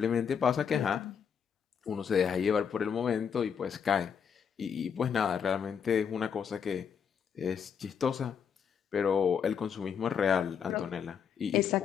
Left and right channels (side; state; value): right; quieter; 7.2 dB